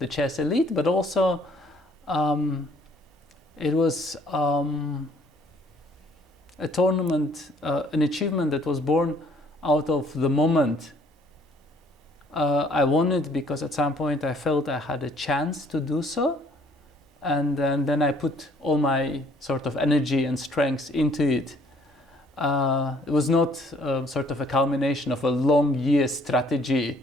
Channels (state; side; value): normal; both; correlation 0.61